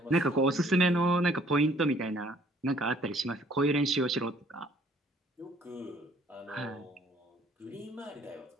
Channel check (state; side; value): normal; both; correlation 0.60